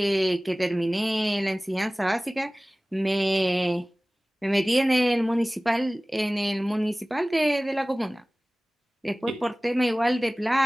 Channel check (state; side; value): normal; both; correlation 0.98